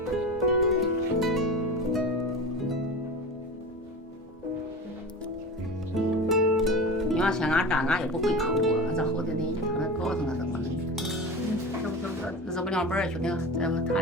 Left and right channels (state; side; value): normal; both; correlation 0.30